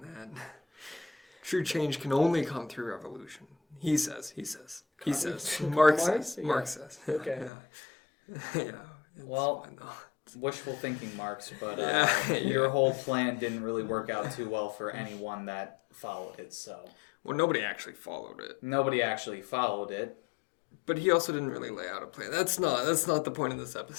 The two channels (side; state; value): right; drops out; at 7.5 s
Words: that. True change can only come through revolution. He says. Marx says. Marx says. Okay. Yeah. Well, wishful thinking, Marx, but your whole plan didn't really work out too well for anyone that followed it. So. Well, nobody actually followed it. But he also didn't really lay out a plan. That's not the point of this